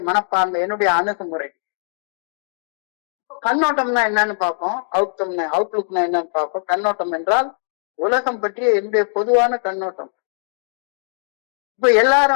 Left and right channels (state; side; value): silent; right; digital silence